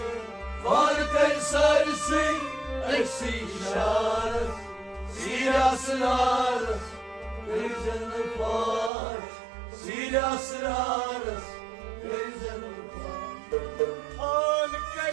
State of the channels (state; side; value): drops out; left; at 8.9 s